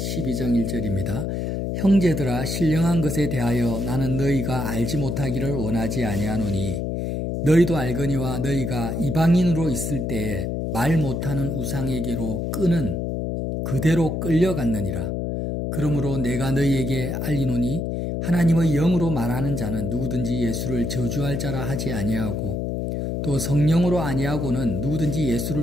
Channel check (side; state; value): left; noise; hum, 2 dB below the sound